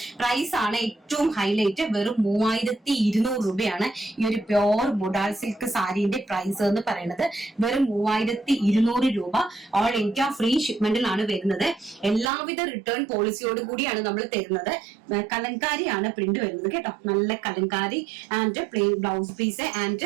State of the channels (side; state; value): left; drops out; at 12.3 s